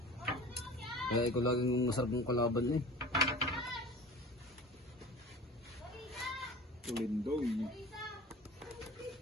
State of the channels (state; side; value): normal; both; correlation 0.39